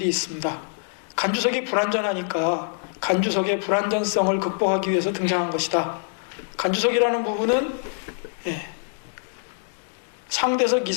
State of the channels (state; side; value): silent; right; digital silence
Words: 있습니다. 간주석이 불완전하니까 간주석의 불완전성을 극복하기 위해서 등장한 것이다. 간주석이라는 부분은 상대석